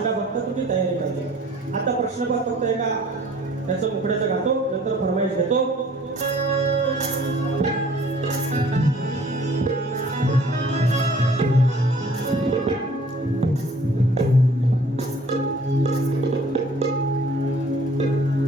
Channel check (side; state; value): both; normal; correlation 0.54